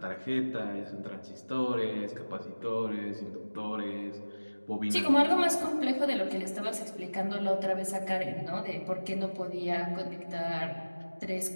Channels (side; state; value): both; inverted; correlation -1.00